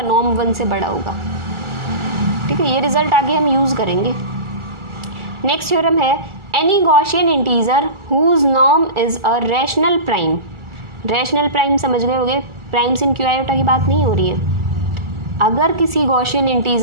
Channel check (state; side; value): late; left; 1.4 ms